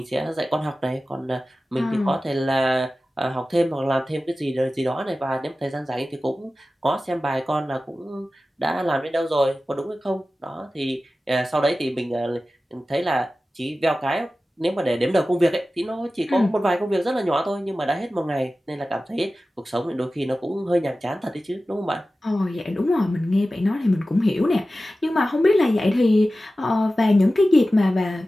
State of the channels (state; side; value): normal; both; correlation 0.95